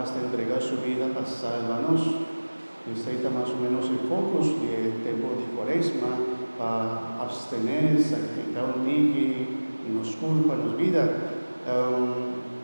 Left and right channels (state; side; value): inverted; both; correlation -1.00